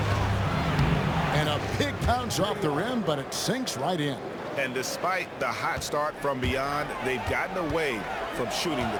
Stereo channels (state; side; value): identical; both; correlation 1.00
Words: And a big bounce off the rim, but it sinks right in. And despite the hot start from beyond, they've gotten away from shooting the